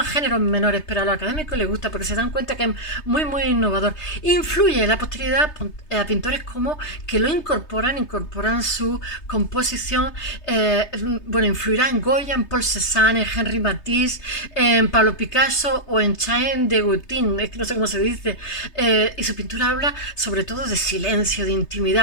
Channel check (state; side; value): late; right; 3.3 ms